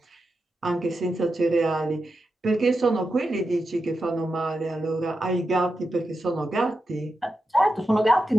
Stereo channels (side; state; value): both; normal; correlation 0.89